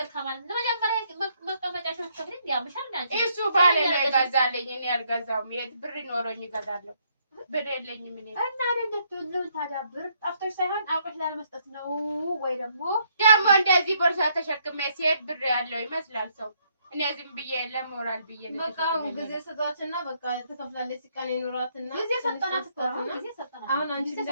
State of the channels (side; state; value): both; inverted; correlation -0.71